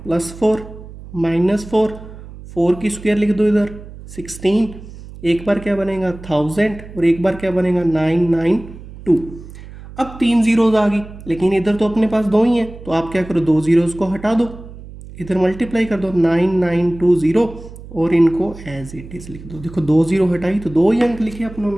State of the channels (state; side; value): noise; right; hum, 16 dB below the sound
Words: +4 -4, 4 की स्क्वायर लिख दो इधर 16। एक बार क्या बनेगा 1000 और एक बार क्या बनेगा 992। अब 3 जीरोज आ गई, लेकिन इधर तो अपने पास 2 ही हैं, तो आप क्या करो, 2 जीरोज को हटा दो, इधर मल्टीप्लाई कर दो 9920 और इनको एज इट इज लिख दो। देखो 2 जीरो हटाई तो 2 ही अंक लिखे अपनों